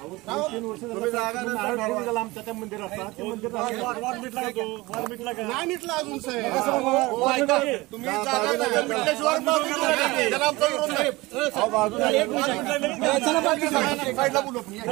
तुम्ही जागा आमच्या त्या मंदिर असतात, ते मंदिर नाही मिटला अजून साहेब। तुम्ही साईडला बोलू,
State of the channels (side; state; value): left; quieter; 21.4 dB